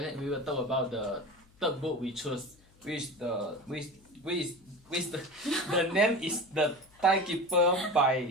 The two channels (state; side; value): noise; left; hum, 29 dB below the sound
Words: we will talk about the third book we chose, which the name is The Timekeeper